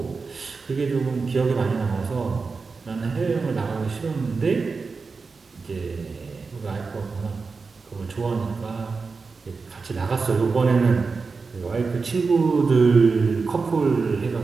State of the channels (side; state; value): left; quieter; 4.6 dB